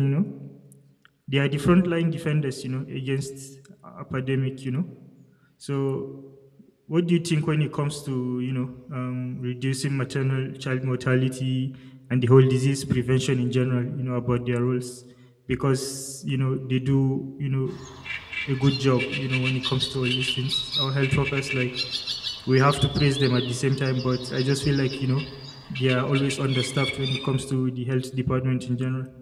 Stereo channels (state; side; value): identical; both; correlation 1.00